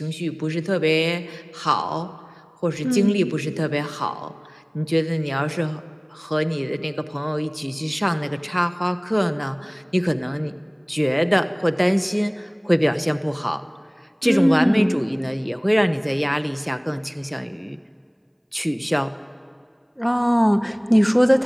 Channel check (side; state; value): both; identical; correlation 1.00